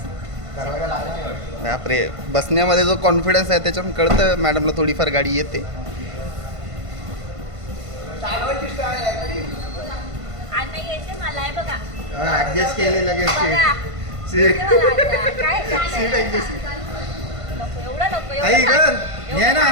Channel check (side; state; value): left; late; 1.5 ms